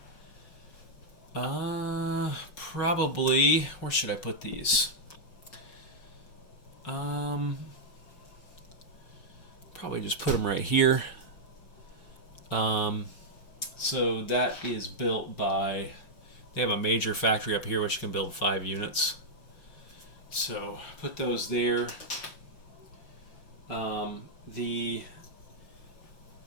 Probably, where should I put these? Probably just put them right here. So that is built by, they have a major factory up here which can build 5 units. So put those there. The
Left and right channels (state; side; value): late; right; 5.4 ms